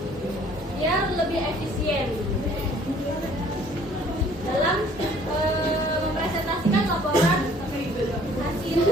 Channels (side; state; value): both; normal; correlation 0.56